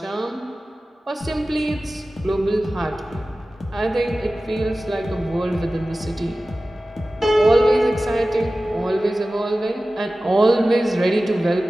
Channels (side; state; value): both; normal; correlation 0.96